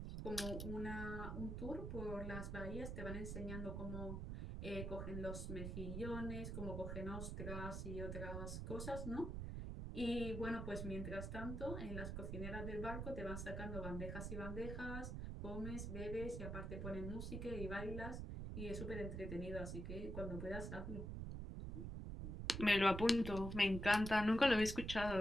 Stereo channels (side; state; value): right; noise; rumble, 4 dB below the sound